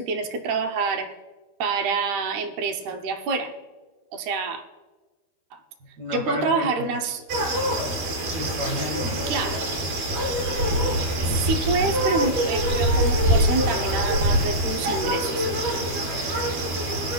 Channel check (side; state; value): left; late; 12 ms